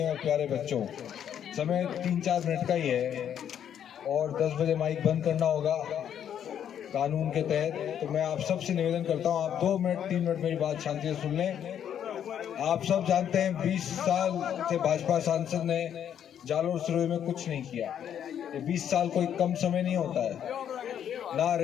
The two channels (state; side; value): quieter; right; 9.4 dB